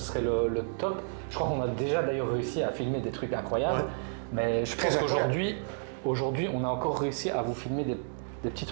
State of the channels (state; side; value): silent; left; digital silence